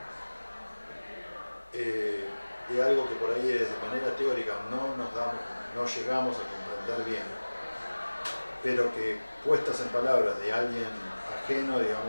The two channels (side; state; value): both; inverted; correlation -1.00